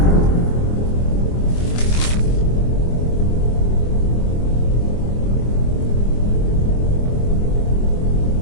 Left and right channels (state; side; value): late; right; 24 ms